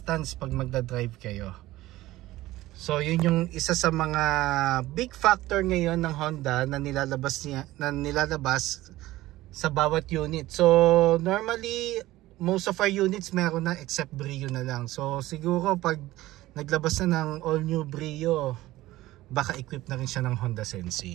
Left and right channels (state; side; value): quieter; left; 16.8 dB